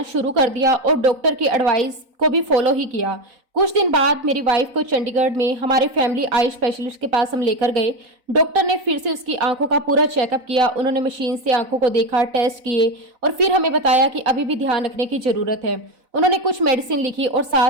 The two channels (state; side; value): late; left; 4.0 ms